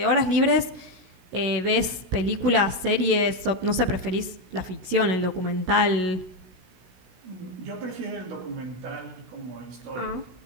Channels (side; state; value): left; late; 16 ms